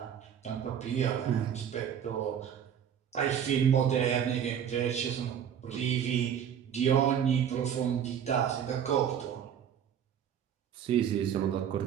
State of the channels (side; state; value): left; quieter; 8.8 dB